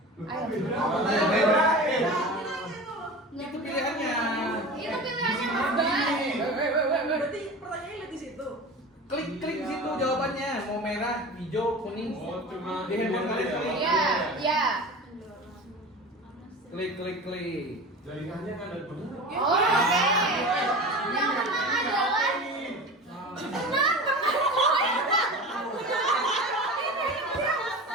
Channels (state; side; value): normal; both; correlation 0.33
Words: Ayo. Itu pilihannya. Itu pilihannya Mas Bay. Berarti pertanyaannya lihat di situ. Klik di situ jawabannya. Mau merah, hijau, kuning. Di handphone kalian klik. Iya, iya. Klik. Jaringannya kan ada benar. Oh, oke. Yang menang adalah tenang.